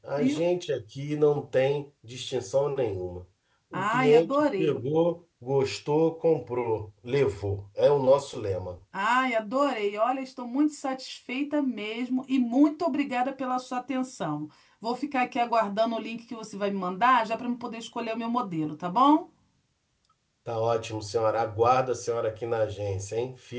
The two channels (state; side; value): identical; both; correlation 1.00